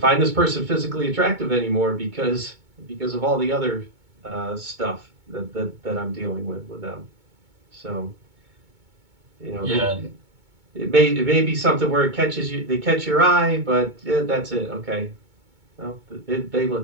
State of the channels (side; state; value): left; late; 2.2 ms